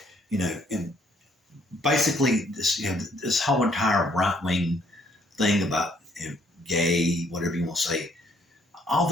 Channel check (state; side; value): normal; both; correlation 0.66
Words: You know, and basically this, you know, this whole entire right-wing thing about, you know, gay, whatever you want to say, all